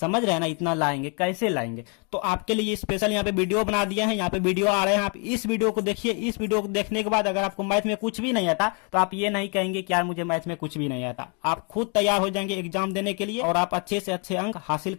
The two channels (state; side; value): quieter; right; 36.7 dB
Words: रहे हैं ना, इतना लाएंगे, कैसे लाएंगे। तो आपके लिए स्पेशल यहाँ पे वीडियो बना दिया है, यहाँ पे वीडियो आ रहे हैं, आप इस वीडियो को देखिए। इस वीडियो को देखने के बाद अगर आपको मैथ में कुछ भी नहीं आता तो आप ये नहीं कहेंगे कि यार मुझे मैथ में कुछ भी नहीं आता। आप खुद तैयार हो जाएंगे एग्जाम देने के लिए और आप अच्छे से अच्छे अंक हासिल